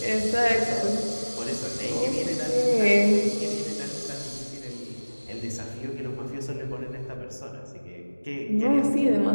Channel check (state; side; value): inverted; both; correlation -1.00